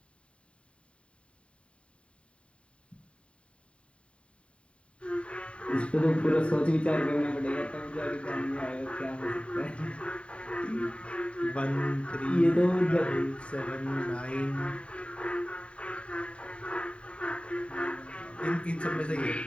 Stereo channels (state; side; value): late; right; 0.060 ms